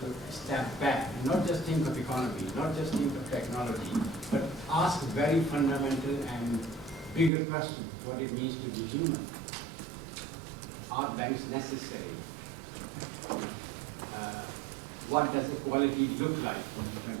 to step back and not just think of economy, not just think of technology, but ask very fundamental and bigger questions: what it means to be human. Are banks necessary? What does equality look like in the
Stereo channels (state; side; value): drops out; left; at 7.3 s